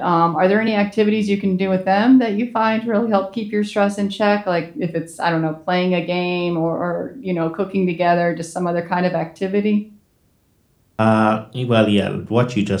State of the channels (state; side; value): identical; both; correlation 1.00